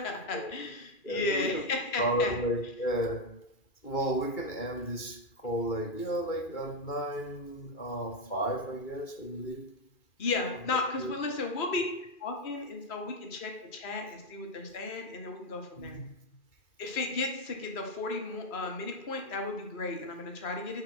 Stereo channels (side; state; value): right; late; 2.4 ms